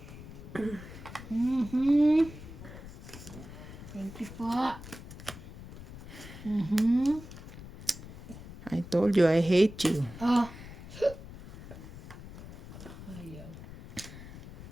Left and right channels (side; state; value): left; noise; rumble, 14 dB below the sound